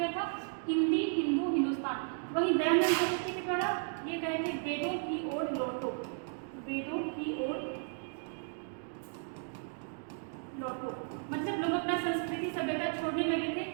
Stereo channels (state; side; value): silent; left; 55 dB below the other